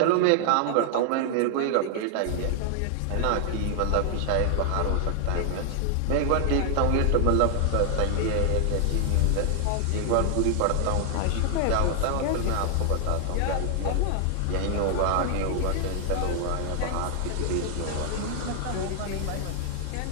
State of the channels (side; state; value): both; different; correlation 0.00